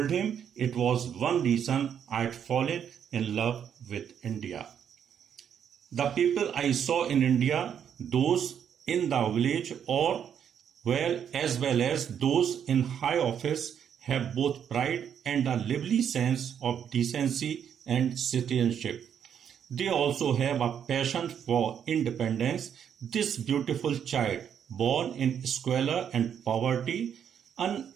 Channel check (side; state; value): left; quieter; 8.5 dB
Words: him it was one reason I had fallen in love with India. The people I saw in India, those in the village as well as those in high office, have both pride and a lively sense of decency and citizenship. They also have a passion for independence. This beautiful child, born in squalor and poverty,